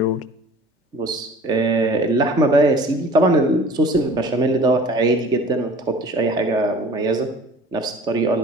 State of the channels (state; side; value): normal; both; correlation 0.45